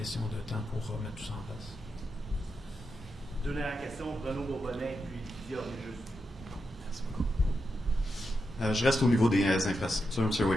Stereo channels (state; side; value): normal; both; correlation 0.86